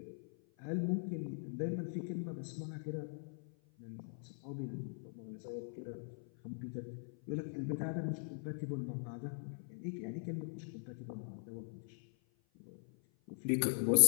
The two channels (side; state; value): right; silent; 50 dB below the other